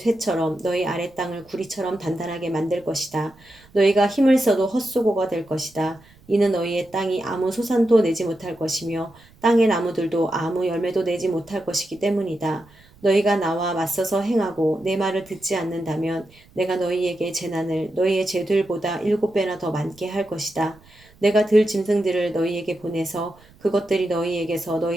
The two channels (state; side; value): noise; right; rumble, 28 dB below the sound